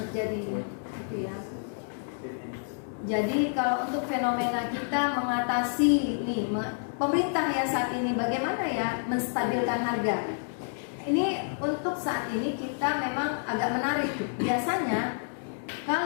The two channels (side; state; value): right; silent; digital silence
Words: terjadi gitu ya. Jadi kalau untuk fenomena kita mengatasi ini, pemerintah ya saat ini bagaimana ya menstabilkan harga. Ini untuk saat ini kita memang agak menarik. Biasanya